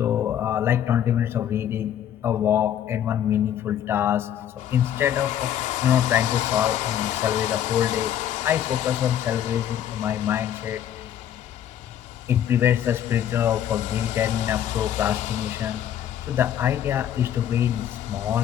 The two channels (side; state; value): right; quieter; 10.3 dB